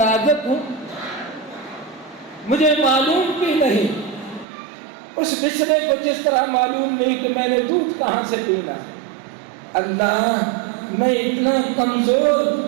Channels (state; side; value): drops out; left; at 4.5 s